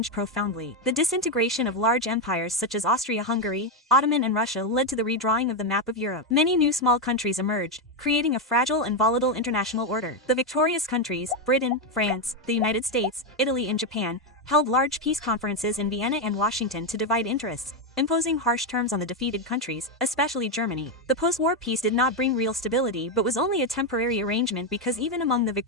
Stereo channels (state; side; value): normal; both; correlation 0.06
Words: profoundly. The disintegration of large empires such as Austria-Hungary, Ottoman and Russia led to the redrawing of the map of Europe. Many new small countries emerged, creating a fragile and volatile international order. The victorious countries, Britain, France, the United States, Italy and Japan, held large peace conferences in Vienna and Washington to divide interests, imposing harsh terms on the defeated countries, especially Germany. The post-war peace did not bring real stability but was only a temporary arrangement because even among the